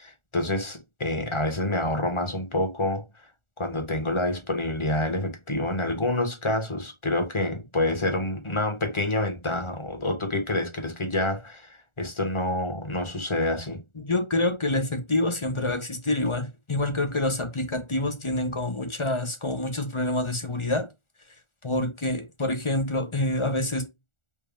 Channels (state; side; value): late; right; 1.4 ms